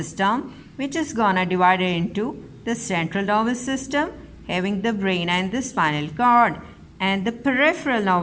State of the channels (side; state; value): both; identical; correlation 1.00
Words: which is gonna divide it into the central nervous system having the brain and the spinal cord, and the peripheral